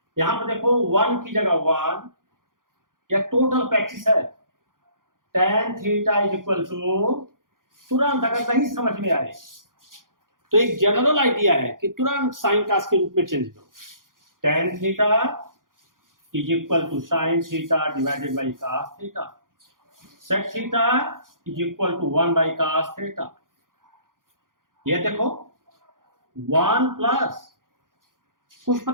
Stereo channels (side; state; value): left; late; 0.90 ms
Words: यहाँ पर देखो 1 की जगह 1, यह टोटल प्रैक्टिस है। tan theta is equal to, तुरंत अगर नहीं समझ में आए तो एक जनरल आइडिया है कि तुरंत साइन कास के रूप में चेंज करो। tan theta is equal to sine theta divided by cos theta. Sec theta is equal to 1 by cos theta. ये देखो 1 प्लस कुछ